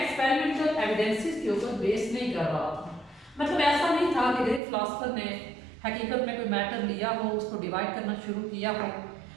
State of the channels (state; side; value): drops out; left; at 4.6 s